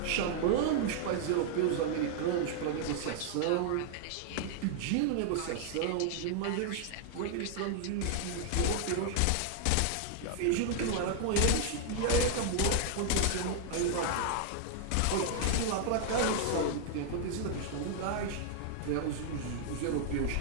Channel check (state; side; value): different; both; correlation 0.00